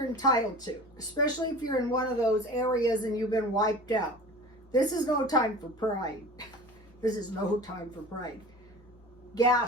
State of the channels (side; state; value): both; normal; correlation 0.38